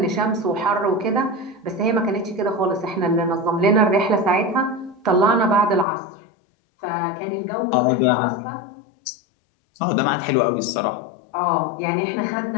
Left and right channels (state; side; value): drops out; right; at 5.9 s